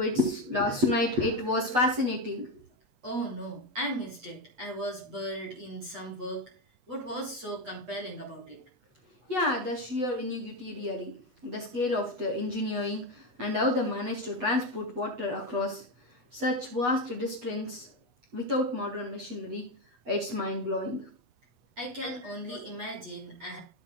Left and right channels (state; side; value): late; left; 8.2 ms